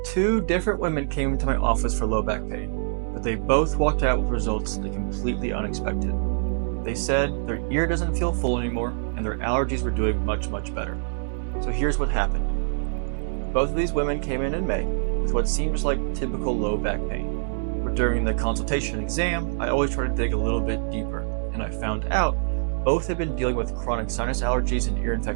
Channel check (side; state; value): left; silent; digital silence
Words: Two different women came into my office for low back pain, but they both walked out with results that completely unexpected. They said their ear doesn't feel full anymore and their allergies were doing much better. So here's what happened. Both of these women came in May with what seems like typical low back pain. But during the consultation exam, I always try to dig a little bit deeper, and I found out both had been dealing with chronic sinus allergies and ear